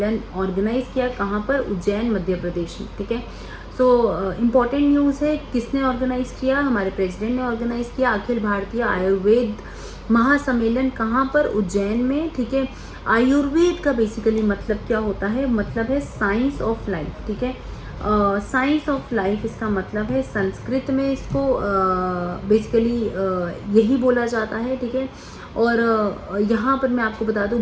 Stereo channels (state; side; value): identical; both; correlation 1.00